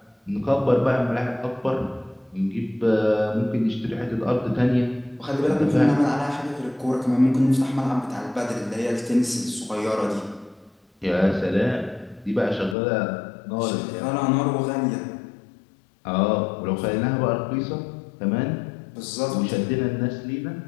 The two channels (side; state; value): right; drops out; at 12.8 s